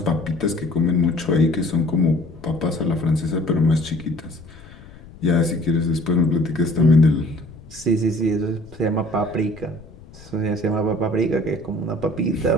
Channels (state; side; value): noise; left; rumble, 19 dB below the sound